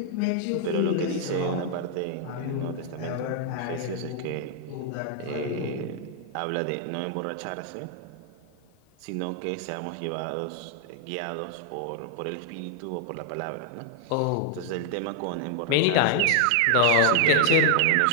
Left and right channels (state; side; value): different; both; correlation 0.00